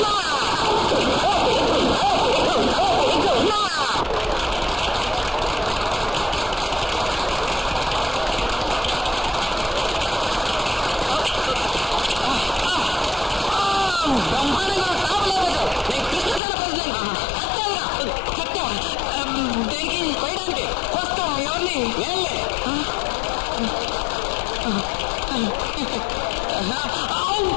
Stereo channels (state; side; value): drops out; right; at 16.4 s